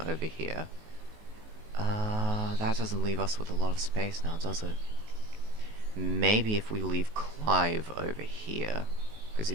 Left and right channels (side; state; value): left; late; 19 ms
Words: over here. That doesn't leave us with a lot of space now, does it? Maybe if we leave Clive over here, because